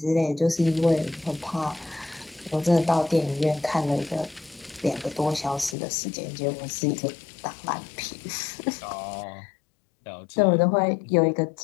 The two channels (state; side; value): drops out; right; at 5.8 s